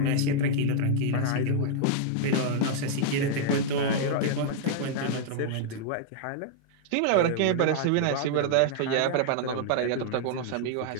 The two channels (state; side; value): different; both; correlation -0.01